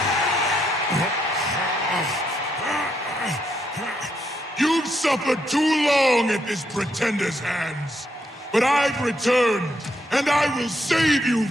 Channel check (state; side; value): normal; both; correlation 0.77